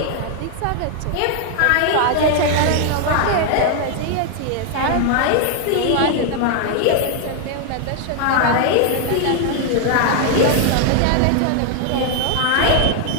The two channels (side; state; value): both; different; correlation 0.00